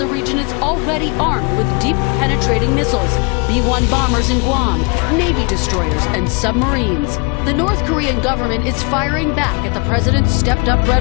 region is already armed with deep penetrating missiles, B-1 bombers in Guam, Navy destroyers and submarines. The North Korean government is firing back at the president's stepped-up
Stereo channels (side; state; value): right; quieter; 32.8 dB